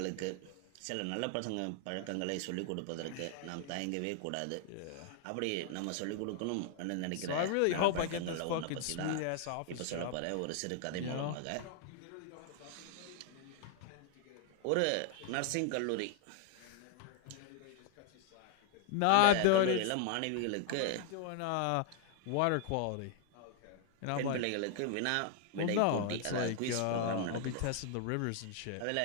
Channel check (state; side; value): different; both; correlation 0.00